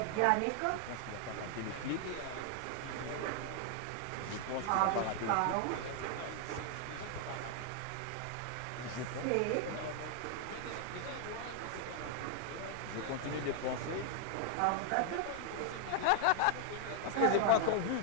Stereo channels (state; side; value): different; both; correlation 0.00